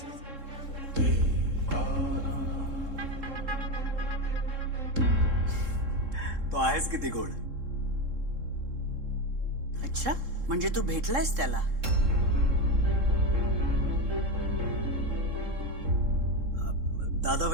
तो आहेस किती गोड. अच्छा, म्हणजे तू भेटलायस त्याला? दादा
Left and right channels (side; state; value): left; late; 3.7 ms